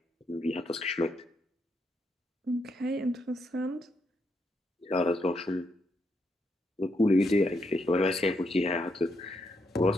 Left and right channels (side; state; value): both; normal; correlation 0.79